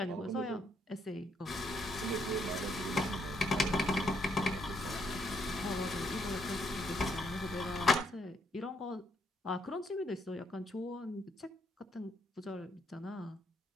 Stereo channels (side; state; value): both; normal; correlation 0.73